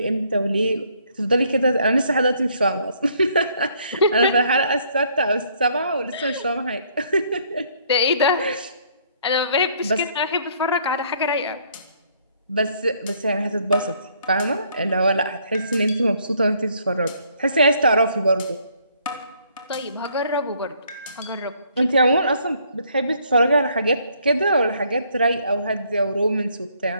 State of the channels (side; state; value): both; inverted; correlation -0.65